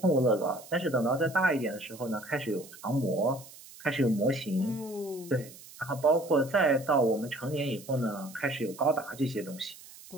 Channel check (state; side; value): noise; right; hiss, 19 dB below the sound